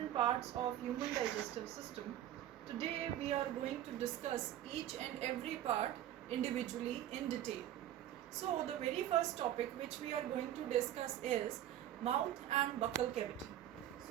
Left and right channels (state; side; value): quieter; left; 12.2 dB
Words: parts of human digestive system. Today we are going to discuss each and every part individually in detail. So the very first topic which we are going to discuss is mouth and buccal cavity.